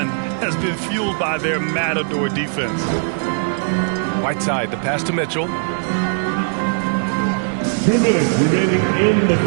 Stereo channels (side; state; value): left; silent; digital silence